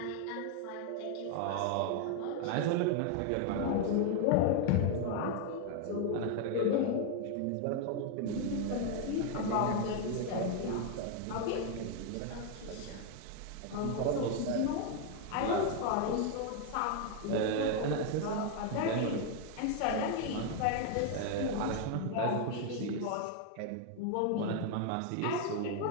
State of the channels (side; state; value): both; different; correlation 0.00